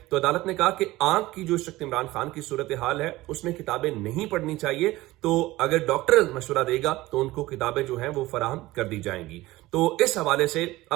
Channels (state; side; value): quieter; left; 18.3 dB